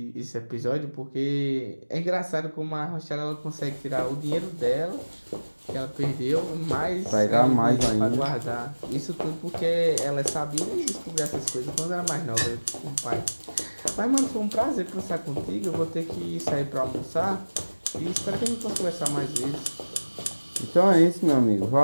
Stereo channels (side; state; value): both; inverted; correlation -1.00